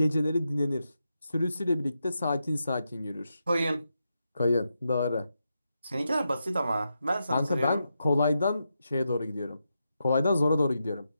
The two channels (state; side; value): inverted; both; correlation -0.86